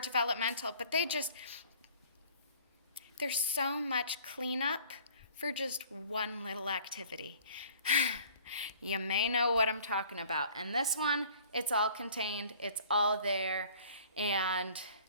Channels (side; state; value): both; inverted; correlation -0.51